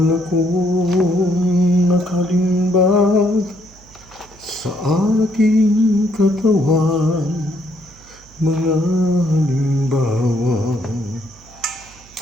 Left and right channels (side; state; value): right; noise; hum, 25 dB below the sound